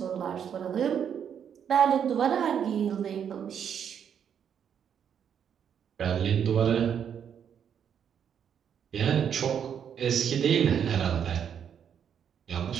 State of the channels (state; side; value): quieter; left; 8.3 dB